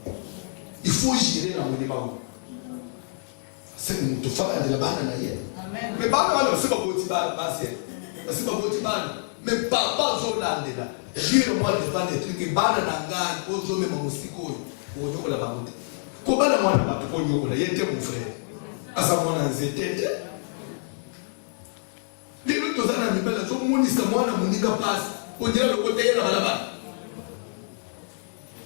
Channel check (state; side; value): silent; right; 61 dB below the other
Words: Il faut jurer dans le monument. c'est que nous te faisons de la banane d'ailleurs. Mais banane, c'est pas petit basi. C'est pas petit banane. Mais papa Zolande là. Jure-moi devant les trucs que banane d'angane, aux hommes et mon musico. Pour que nous la banane. Comment la moine va te prendre là? Il était mon frère. À sa moine en zété. Les autres gens n'ont pas la zone mouni sa moine mouni passe. On dirait le côté de la balabane.